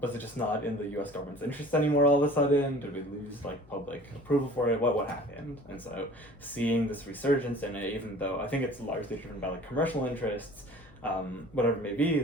was it just not in the US government's interest anymore all of a sudden? Did we lose like public approval for it? What happened? And so seeing this resurgence in it, even though I think it's largely driven by like commercial interests, whatever it may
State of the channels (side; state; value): left; noise; hum, 24 dB below the sound